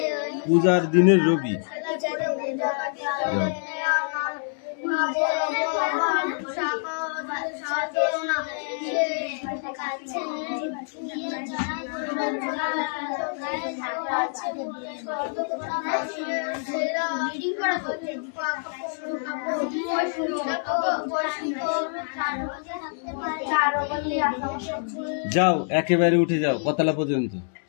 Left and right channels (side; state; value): right; silent; 61 dB below the other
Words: পূজার দিনের রবি। যাও একেবারে উঠে যাও, কতলা পর্যন্ত